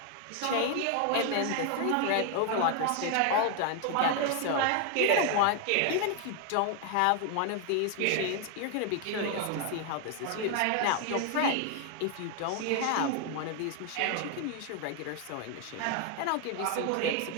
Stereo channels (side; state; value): both; different; correlation 0.01